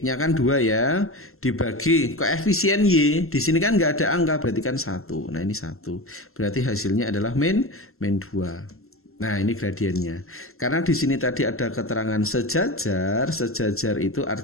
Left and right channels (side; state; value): right; late; 0.62 ms